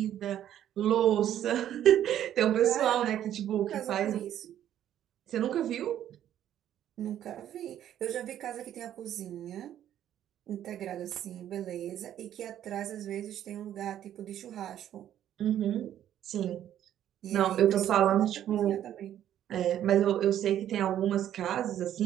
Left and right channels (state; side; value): quieter; left; 11.1 dB